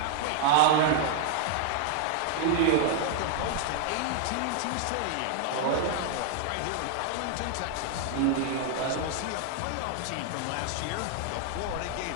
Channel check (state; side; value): different; both; correlation -0.01